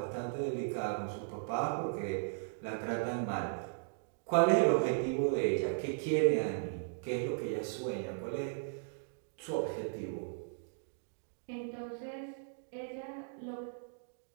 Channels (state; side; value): silent; left; digital silence